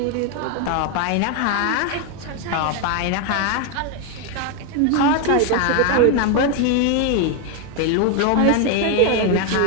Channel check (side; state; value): both; different; correlation 0.01